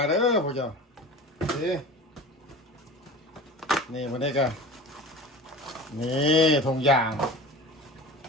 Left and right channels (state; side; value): normal; both; correlation 0.35